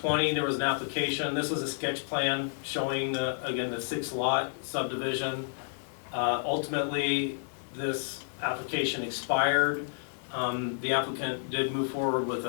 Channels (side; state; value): right; silent; digital silence